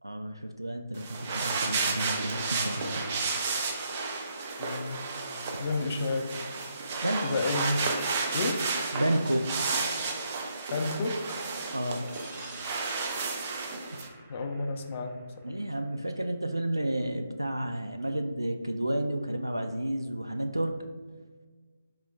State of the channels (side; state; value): both; inverted; correlation -0.77